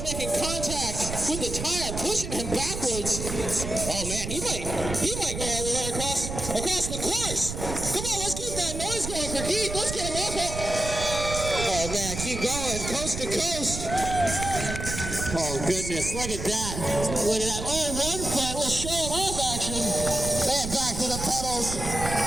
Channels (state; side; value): noise; right; rumble, 6 dB below the sound